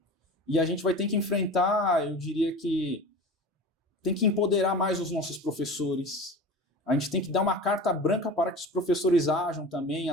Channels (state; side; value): normal; both; correlation 0.34